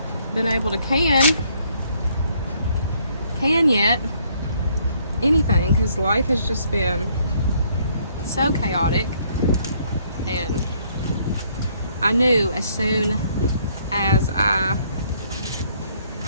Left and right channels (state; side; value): inverted; both; correlation -0.67